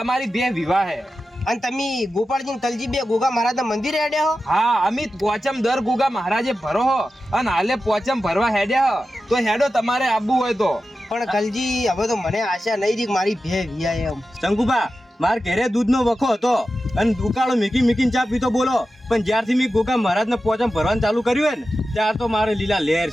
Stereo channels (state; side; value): normal; both; correlation 0.92